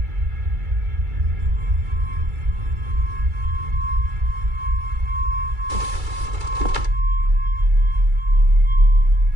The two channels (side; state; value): left; late; 2.3 ms